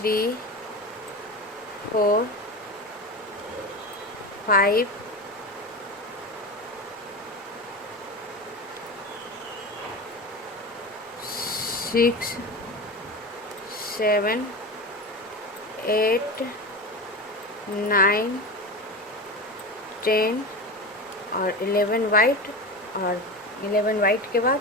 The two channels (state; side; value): normal; both; correlation 0.26